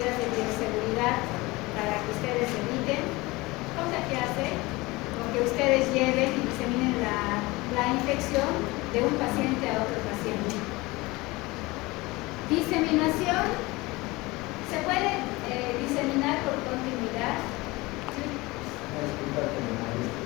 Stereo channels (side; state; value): right; quieter; 22.0 dB